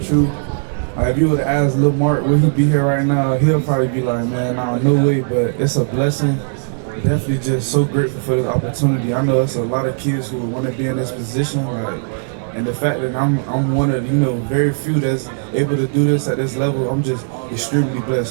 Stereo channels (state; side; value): silent; left; digital silence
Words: If you would have asked Lil Mark, would he be here right now? He'll probably be like, man, nah, no way. But it's a blessing. Definitely just so grateful for this opportunity. I know it's a lot of kids who want to be in this position, and the fact that I'm one of the, very few that's able to do this at this level, I'm just extremely blessed.